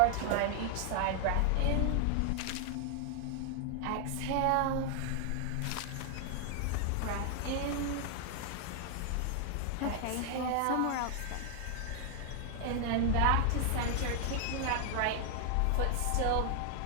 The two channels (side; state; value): both; different; correlation 0.00